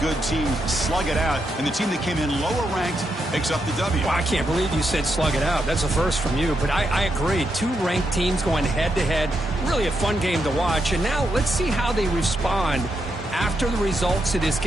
good teams slug it out, and the team that came in lower ranked picks up the W. Well, I can't believe you said slug it out. That's a first from you, but I agree. 2 ranked teams going head-to-head. Really a fun game to watch. And now let's see how they respond after the results of this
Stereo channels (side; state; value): both; normal; correlation 0.82